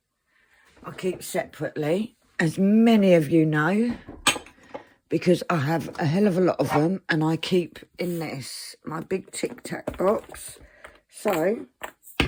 I keep separately, as many of you know, because I have a hell of a lot of them, and I keep in this, my big Tic Tac box. So,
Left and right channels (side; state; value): both; identical; correlation 1.00